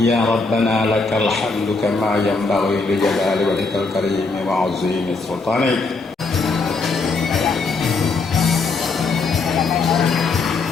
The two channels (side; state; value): right; quieter; 4.0 dB